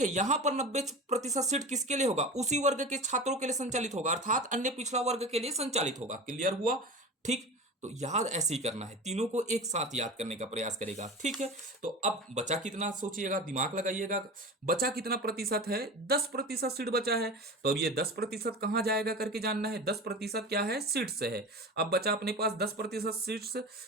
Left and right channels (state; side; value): normal; both; correlation 0.31